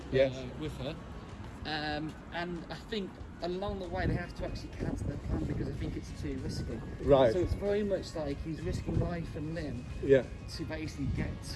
with her. And I think along the way they have to actually cancel their plan because I think it's too risky. Right. So it's very much like he's risking life and limb to basically get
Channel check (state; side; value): identical; both; correlation 1.00